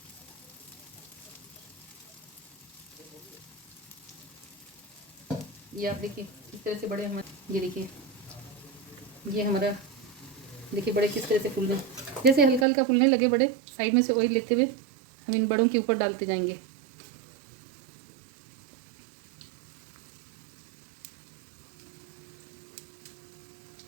ये आप देखिए इस तरह से बड़े हमारे, ये देखिए ये हमारा देखिए बड़े किस तरह से फूल रहे हैं। जैसे हल्का हल्का फूलने लगे बड़े, साइड में से ऑयल लेते हुए हम इन बड़ों के ऊपर डालते जाएंगे।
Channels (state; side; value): drops out; left; at 12.7 s